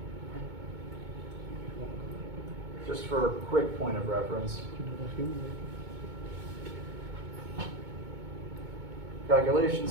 just for a quick point of reference,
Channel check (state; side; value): late; left; 2.2 ms